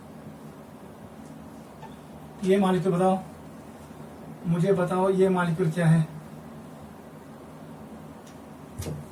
ये मॉलिक्यूल बताओ, मुझे बताओ ये मॉलिक्यूल क्या है।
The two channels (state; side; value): identical; both; correlation 1.00